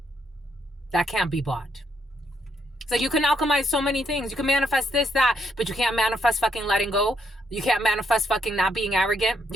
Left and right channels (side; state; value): both; normal; correlation 0.75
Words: That can't be bought. So you can alchemize so many things. You can manifest this, that, but you can't manifest fucking letting go. You can't manifest fucking not being arrogant.